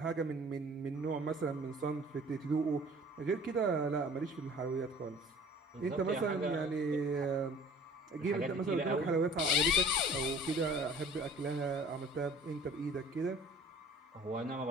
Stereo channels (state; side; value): normal; both; correlation 0.48